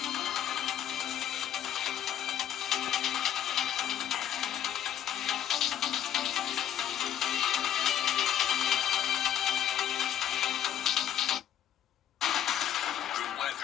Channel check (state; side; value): quieter; right; 10.7 dB